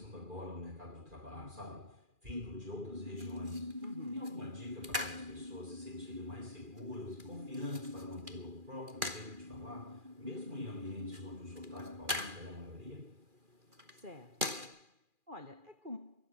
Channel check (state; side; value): late; left; 2.4 ms